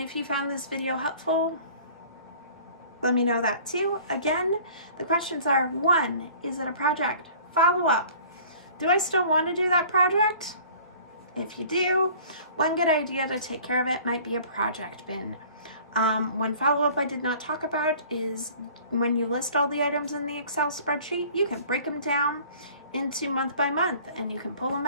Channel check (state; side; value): inverted; both; correlation -0.48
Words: if you found this video helpful, let me know that too. Again, the questions are: 1, is it a project? Follow up, do I still want to do that project? If you do, one good idea to take care of it might be a project bin. One follow-up I did not talk about is when you list all the items in the Excel spreadsheet, you can break them down into month by month, and you can pull them